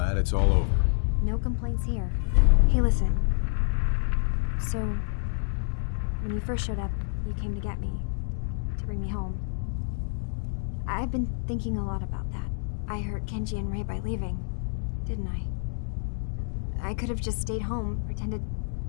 it's all over. No complaints here. Hey, listen. So, when you first showed up, you came to get me. To bring me home. I've been thinking a lot about that. I hurt Kenji and Ray by leaving, didn't I? I could have just stayed home, pretended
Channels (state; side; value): silent; right; digital silence